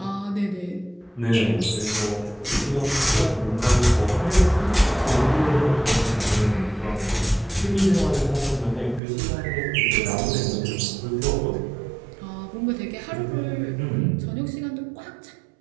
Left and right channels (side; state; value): left; drops out; at 9.0 s